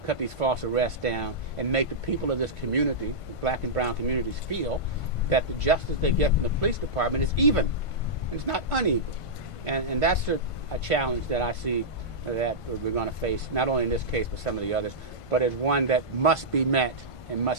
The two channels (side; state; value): right; late; 1.5 ms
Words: cut these false arrests down, and make the people of this community, the black and brown communities, feel that the justice they get from the police department is even. It's not unequal. And that's a challenge that I see that we're going to face, not only in this case, but some of the others, but as one that must be met and